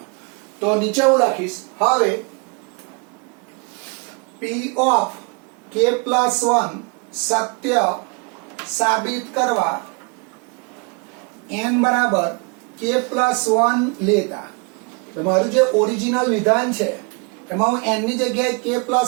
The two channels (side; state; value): left; quieter; 32.5 dB